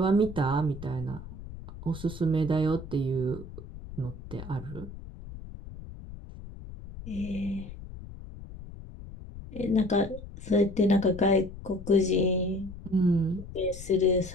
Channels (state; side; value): noise; left; rumble, 13 dB below the sound